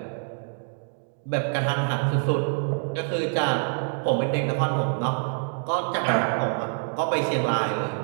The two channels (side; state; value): left; silent; 59 dB below the other